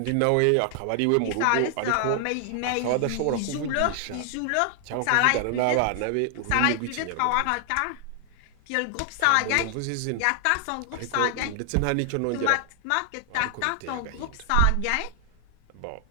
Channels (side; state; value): both; different; correlation 0.00